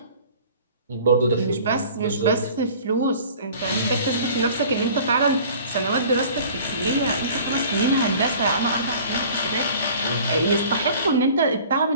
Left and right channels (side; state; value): both; inverted; correlation -0.47